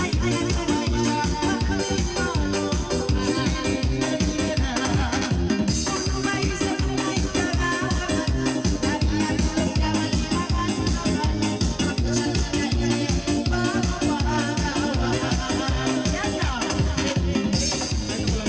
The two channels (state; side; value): identical; both; correlation 1.00